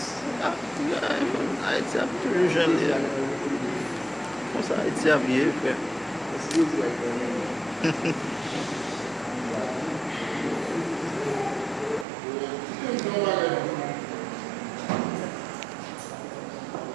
Haïti a plus jeune. Comme ça, Haïti a bien fait.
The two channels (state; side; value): drops out; left; at 12.1 s